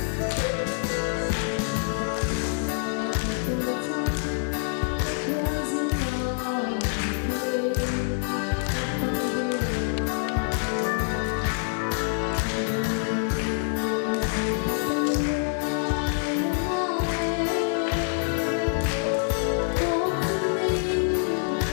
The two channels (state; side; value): silent; right; 59 dB below the other